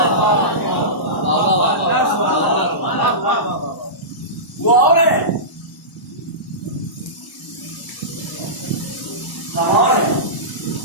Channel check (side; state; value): right; late; 1.0 ms